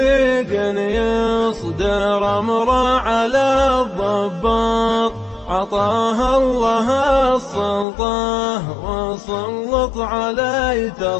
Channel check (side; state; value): right; drops out; at 7.9 s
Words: يصدر أمره على الضباط عطاه الله السلطة وسلط علي